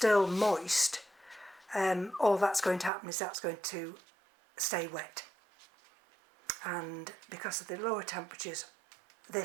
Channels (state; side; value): drops out; left; at 2.9 s